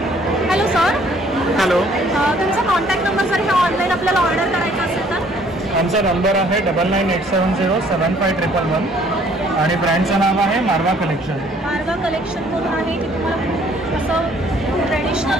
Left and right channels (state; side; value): normal; both; correlation 0.60